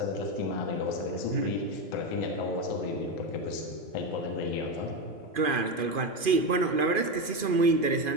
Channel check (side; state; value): left; late; 2.5 ms